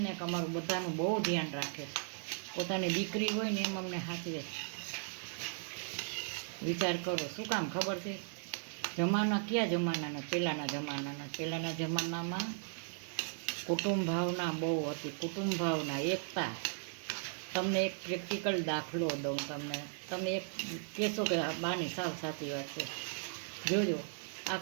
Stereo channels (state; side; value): silent; left; digital silence